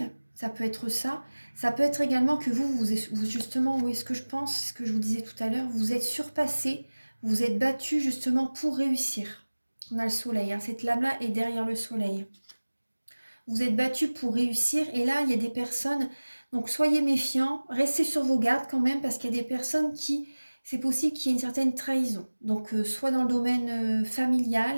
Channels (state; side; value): inverted; both; correlation -1.00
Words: Ça peut être ça. Ça peut être également que vous justement, oui, ce que je pense, ce que je vous disais tout à l'heure, vous êtes surpassé, vous êtes battu justement pour réussir. On a le soleil, hein, cette lame-là est derrière le soleil. Vous êtes battu pour réussir et là, il y a des personnes, donc soyez méfiants, restez sur vos gardes quand même parce qu'il y a des personnes qui, c'est possible qu'il y ait une certaine trahison. Donc soit dans le domaine